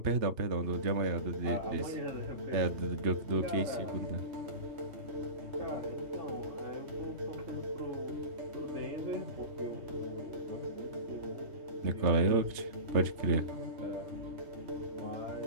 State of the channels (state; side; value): late; left; 3.3 ms